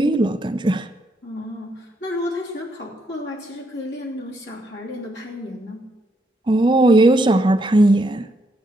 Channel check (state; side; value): normal; both; correlation 0.77